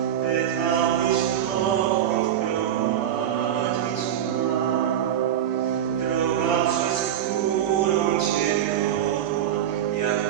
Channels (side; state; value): left; quieter; 10.5 dB